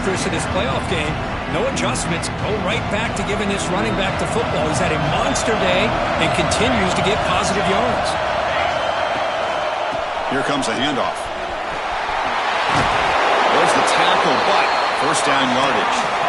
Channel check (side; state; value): both; identical; correlation 1.00